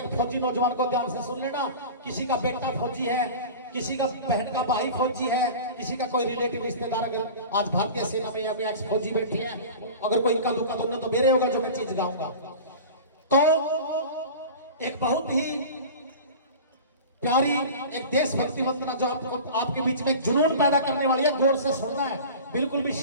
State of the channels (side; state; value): both; inverted; correlation -0.36